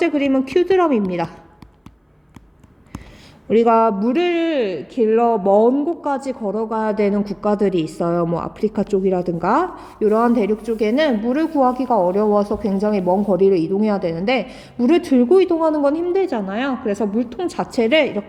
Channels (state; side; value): identical; both; correlation 1.00